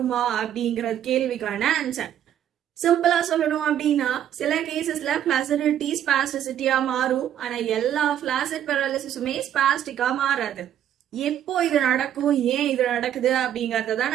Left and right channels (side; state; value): left; quieter; 10.6 dB